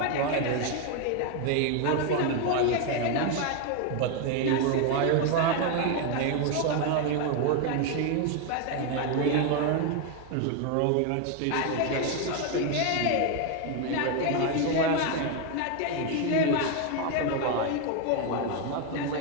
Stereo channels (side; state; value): both; different; correlation 0.01